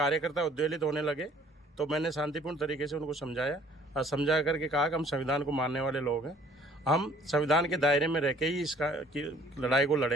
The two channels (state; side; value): normal; both; correlation 0.57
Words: उद्वेलित होने लगे तो मैंने शांतिपूर्ण तरीके से उनको समझाया और समझा करके कहा कि हम संविधान को मानने वाले लोग हैं, हम संविधान के दायरे में रह के ही इसका की लड़ाई को